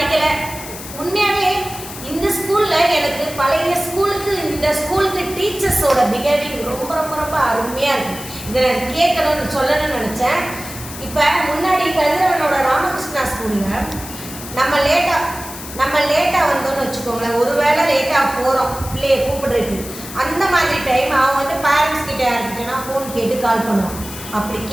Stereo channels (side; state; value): left; noise; hiss, 12 dB below the sound